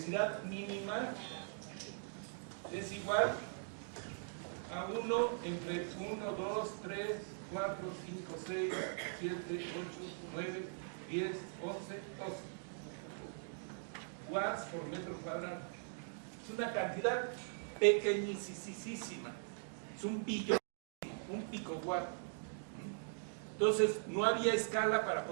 mínima, es igual a 1 entre 1, 2, 3, 4, 5, 6, 7, 8, 9, 10, 11, 12 watts por metro cuadrado. Es una cantidad pequeñísima, es un billón, un picowatt. Entonces no había escala para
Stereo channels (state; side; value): silent; left; digital silence